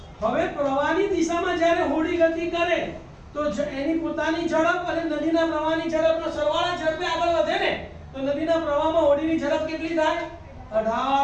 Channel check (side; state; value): both; identical; correlation 1.00